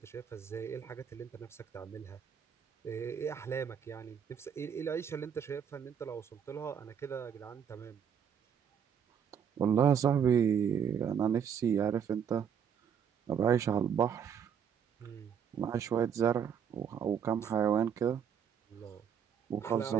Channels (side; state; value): left; quieter; 7.9 dB